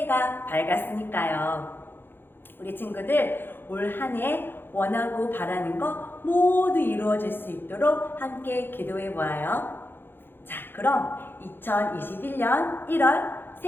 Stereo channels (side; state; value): right; late; 0.10 ms